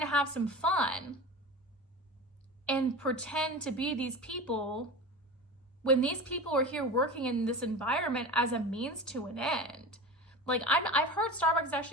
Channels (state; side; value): normal; both; correlation 0.30